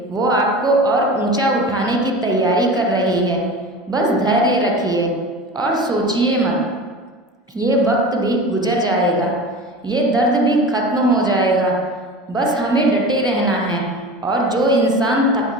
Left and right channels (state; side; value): normal; both; correlation 0.33